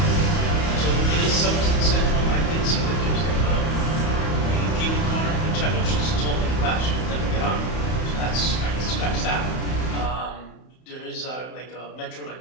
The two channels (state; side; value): late; right; 31 ms